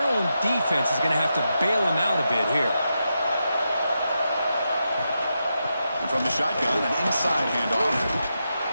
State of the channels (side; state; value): both; inverted; correlation -0.86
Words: own defense is going to have to bail them out a bit here. And from the shotgun, an inside handoff.